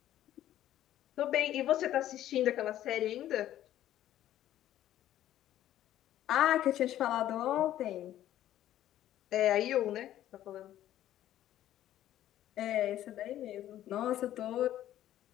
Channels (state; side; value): quieter; right; 12.6 dB